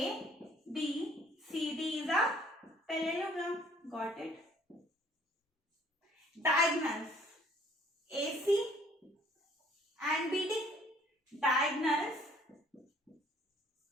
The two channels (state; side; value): normal; both; correlation 0.58